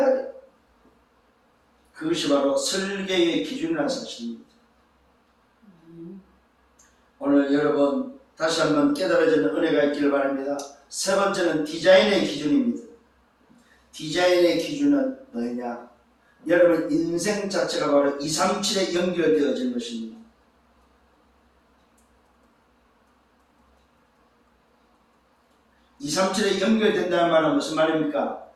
그것이 바로 설계의 기준이라는 사실입니다. 오늘 여러분 다시 한번 깨달아지는 은혜가 있기를 바랍니다. 세 번째는 디자인의 기준입니다. 디자인의 기준은 뭐냐? 여러분 인생 자체가 바로 237에 연결되어진 것입니다. (237에) 연결된다는 말은 무슨 말입니까?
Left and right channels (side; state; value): both; identical; correlation 1.00